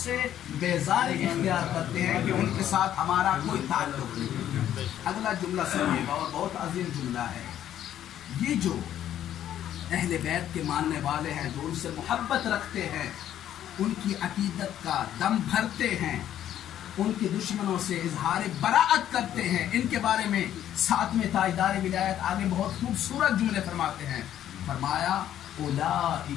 سے بیزاری اختیار کرتے ہیں کہ ان کے ساتھ ہمارا کوئی تعلق نہیں۔ اگلا جملہ سنیے گا اور بہت عظیم جملہ ہے۔ یہ جو اہل بیت کے ماننے والے ہیں، جو ان سے محبت رکھتے ہیں، ان کی عقیدت کا دم بھرتے ہیں، ان کے دشمنوں سے اظہار براءت کرتے ہیں، ان کے بارے میں 7ویں تاجدار ولایت آگے بہت خوبصورت جملے فرماتے ہیں۔ فرمایا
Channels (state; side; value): quieter; right; 11.2 dB